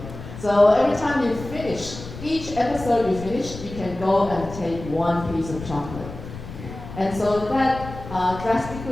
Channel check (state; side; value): noise; left; rumble, 12 dB below the sound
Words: So every time you finish, each episode you finish, you can go and take one piece of chocolate. And so that